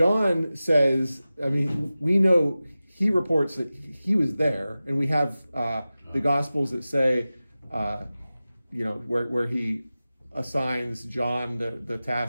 says, I mean, we know he reports that he was there, and we have the Gospels that say, where he assigns John the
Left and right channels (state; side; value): inverted; both; correlation -0.95